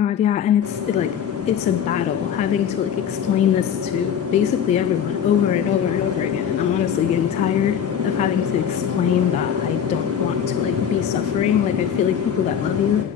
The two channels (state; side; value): quieter; right; 8.5 dB